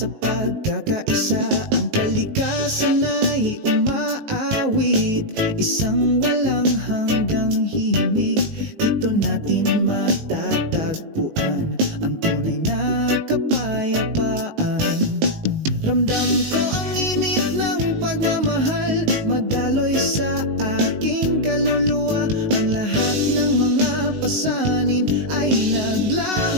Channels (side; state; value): left; late; 19 ms